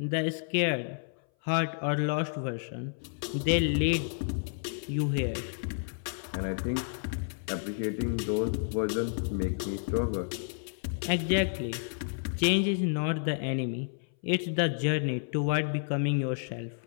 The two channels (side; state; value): right; silent; 57 dB below the other